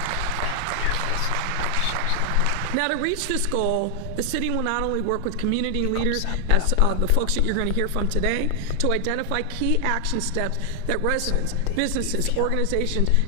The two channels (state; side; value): different; both; correlation 0.00